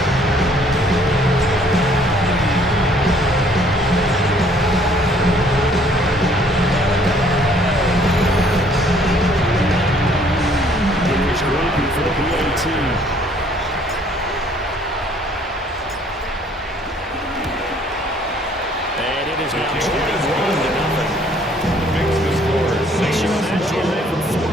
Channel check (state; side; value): normal; both; correlation 0.60